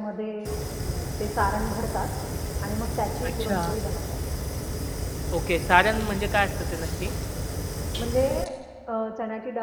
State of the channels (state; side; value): identical; both; correlation 1.00